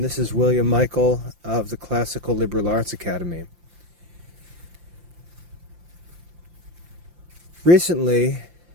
this is William Michael of the Classical Liberal Arts Academy. Recently,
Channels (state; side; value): late; left; 5.8 ms